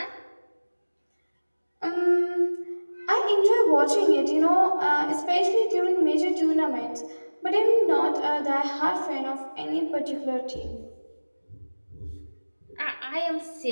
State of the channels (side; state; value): both; inverted; correlation -1.00